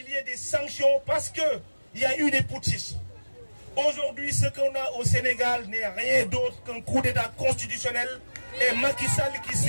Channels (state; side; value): inverted; both; correlation -1.00